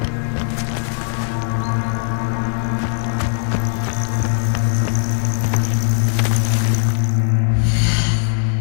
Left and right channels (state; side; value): silent; right; digital silence